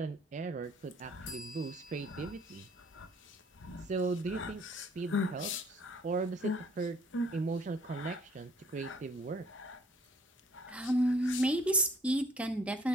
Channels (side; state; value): both; normal; correlation 0.58